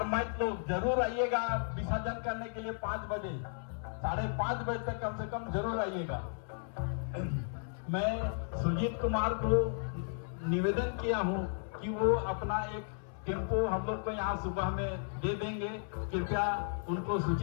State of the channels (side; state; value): right; silent; 55 dB below the other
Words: लोग जरूर आइएगा विसर्जन करने के लिए 5 बजे, 5:30 बजे तक कम से कम जरूर आइएगा। मैं सुजीत कुमार को निवेदन किया हूँ कि वो अपना एक टेम्पो हम लोग को यहाँ सुबह में दे देंगे, कृपया उनको